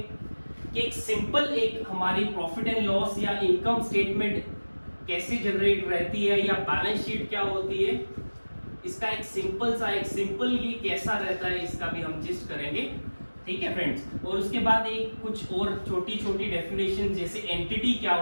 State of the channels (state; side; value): inverted; both; correlation -1.00